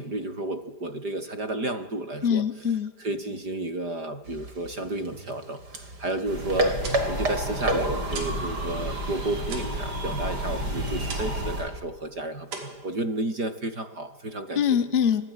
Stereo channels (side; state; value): left; late; 5.0 ms